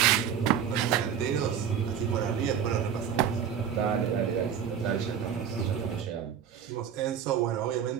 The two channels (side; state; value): left; quieter; 8.4 dB